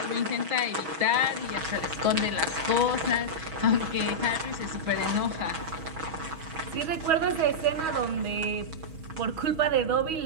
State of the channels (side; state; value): left; late; 6.2 ms